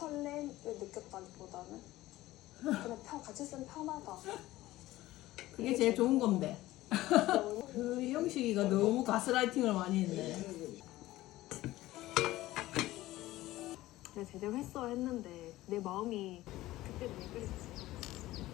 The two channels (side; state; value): right; quieter; 16.7 dB